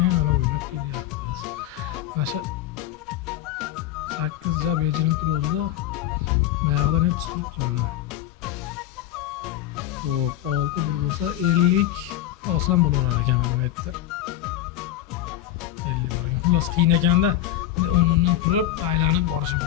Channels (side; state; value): right; quieter; 13.0 dB